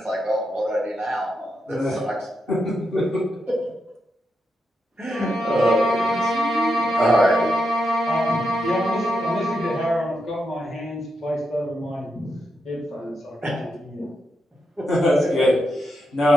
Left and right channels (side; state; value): both; normal; correlation 0.85